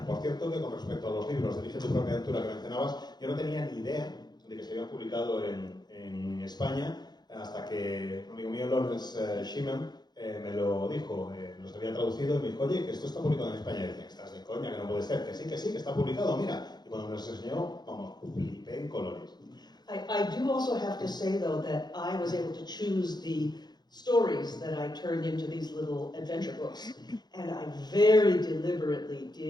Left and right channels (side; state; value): right; late; 0.20 ms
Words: Por cierto, que con respecto a los libros de Elige tu propia aventura que mencionabas, yo no tenía ni idea de que se habían publicado en España, hasta que un amigo mío, Lawrence Schimmel, me lo dijo, los había traducido y me dijo, oye, que esto está publicado en España. Y dije, estás de coña, que no puede ser, que sí, que está publicado, mira. Y cuando me los enseñó, vamos, flipé en colores. I do also have to say, though, that I was able to choose the stories that I turned into these little adventure books. And I very deliberately